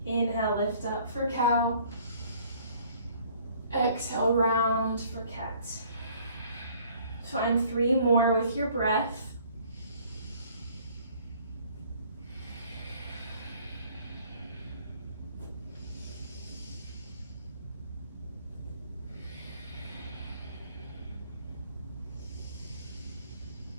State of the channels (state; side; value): inverted; both; correlation -0.58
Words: Inhale, lift up for cow. Exhale, round for cat. Find 3 more with your breath.